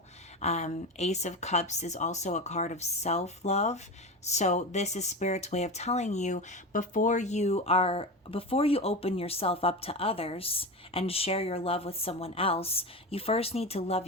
Ace of Cups is also a card of self-love. So this is Spirit's way of telling you, before you open yourself up to others and share your love with someone else, you first need to love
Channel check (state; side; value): normal; both; correlation 0.23